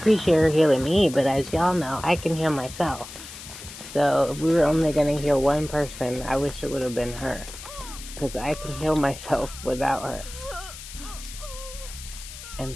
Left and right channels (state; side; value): noise; left; hiss, 13 dB below the sound